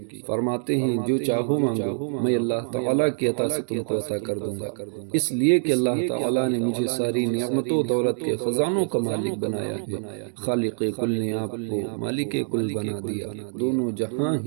فرماتے ہیں جو چاہو مانگو، میں اللہ تعالیٰ کی عطا سے تم کو عطا کر دوں گا، اس لیے کہ اللہ تعالیٰ نے مجھے ساری نعمت و دولت کے خزانوں کا مالک بنایا ہے۔ خالق کل نے آپ کو مالک کل بنا دیا، دونوں جہاں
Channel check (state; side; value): silent; left; digital silence